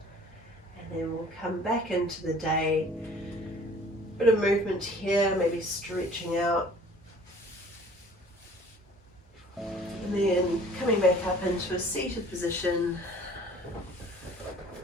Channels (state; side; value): normal; both; correlation 0.51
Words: And then we'll come back into the day. Bit of movement here, maybe stretching out. And then coming back up into a seated position.